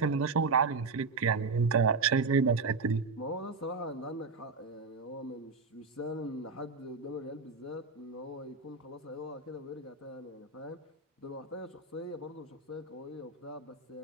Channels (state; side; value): quieter; left; 4.3 dB